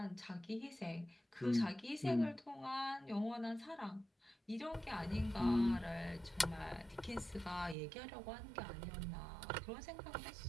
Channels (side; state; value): left; drops out; at 7.8 s